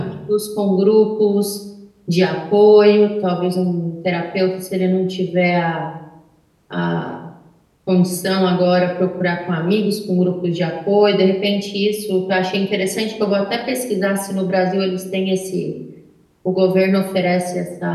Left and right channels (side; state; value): both; identical; correlation 1.00